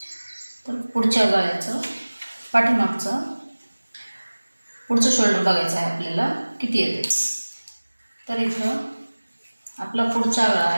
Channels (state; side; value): inverted; both; correlation -1.00